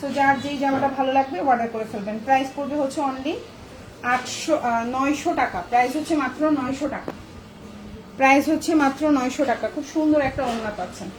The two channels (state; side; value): identical; both; correlation 1.00